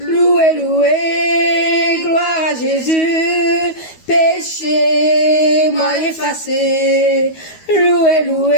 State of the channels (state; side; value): late; right; 12 ms